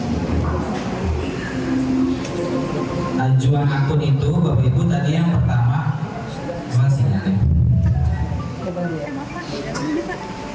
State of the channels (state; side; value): identical; both; correlation 1.00